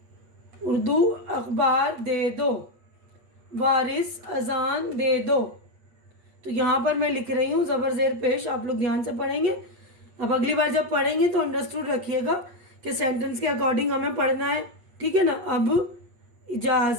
उर्दू अखबार दे दो, वारिस अजान दे दो। तो यहाँ पर मैं लिख रही हूँ ज़बर ज़ेर पेश, आप लोग ध्यान से पढ़ेंगे। अब अगली बार जब पढ़ेंगे तो अंडरस्टूड रखिएगा कि सेंटेंस के अकॉर्डिंग हमें पढ़ना है। ठीक है ना। अब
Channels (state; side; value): late; left; 8.4 ms